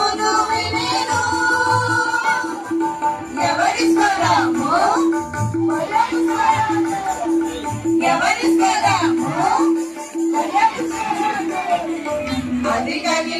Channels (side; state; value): both; identical; correlation 1.00